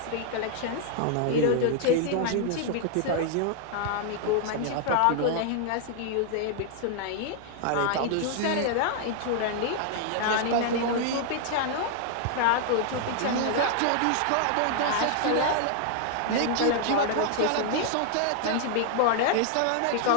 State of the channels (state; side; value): different; both; correlation 0.00